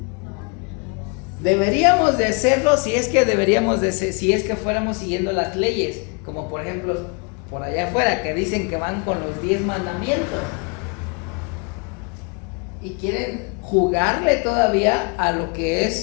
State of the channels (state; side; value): quieter; right; 34.1 dB